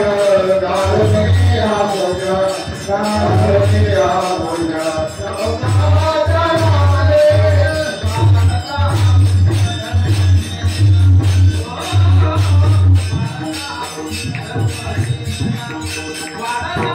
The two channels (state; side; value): identical; both; correlation 1.00